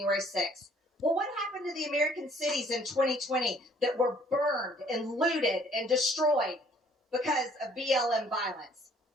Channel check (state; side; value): normal; both; correlation 0.60